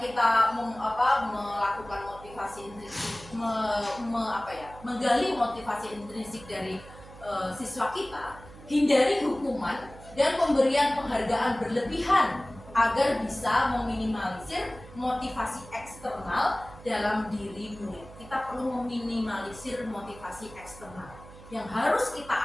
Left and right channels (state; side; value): noise; right; hum, 18 dB below the sound